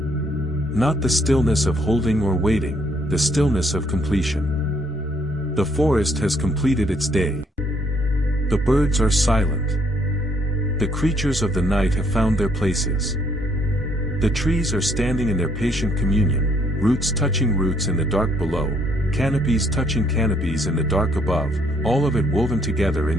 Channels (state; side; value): normal; both; correlation 0.68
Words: the stillness of holding or waiting, the stillness of completion. The forest has completed its day. The birds are silent. The creatures of the night have found their places. The trees are standing in their patient communion, roots touching roots in the dark below, canopies touching canopies in the dark above, all of it woven together in